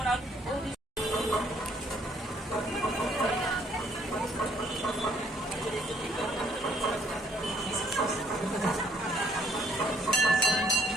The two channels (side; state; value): both; normal; correlation 0.66